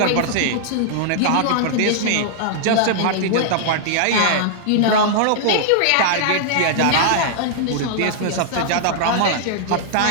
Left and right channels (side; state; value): both; different; correlation -0.01